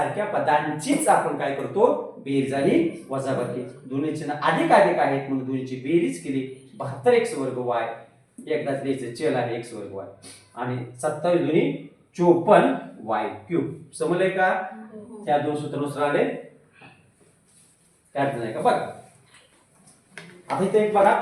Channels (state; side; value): identical; both; correlation 1.00